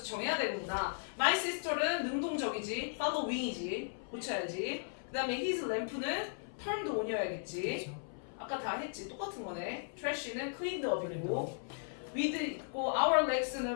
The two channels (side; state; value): right; silent; 53 dB below the other